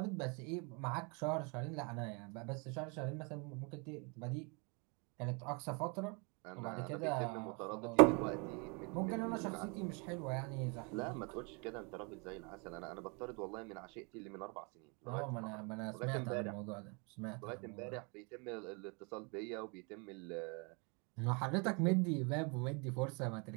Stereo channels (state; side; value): quieter; left; 32.8 dB